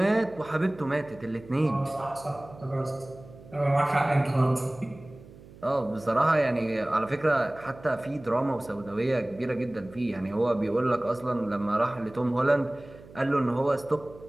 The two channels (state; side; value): noise; right; hum, 20 dB below the sound